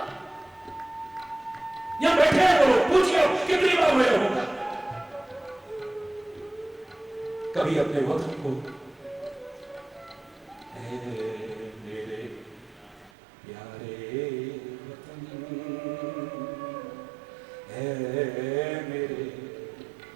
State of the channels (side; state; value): left; drops out; at 13.1 s